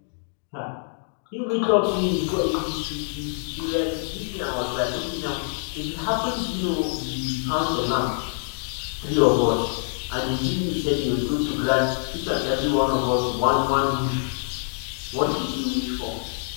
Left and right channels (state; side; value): silent; right; 62 dB below the other